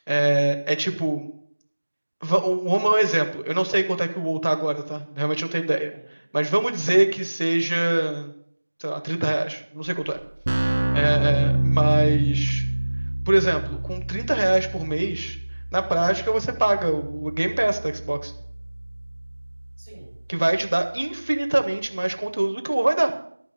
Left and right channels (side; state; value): both; inverted; correlation -1.00